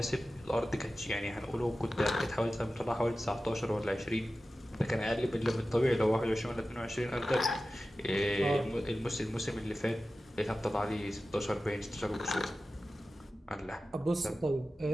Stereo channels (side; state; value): both; normal; correlation 0.95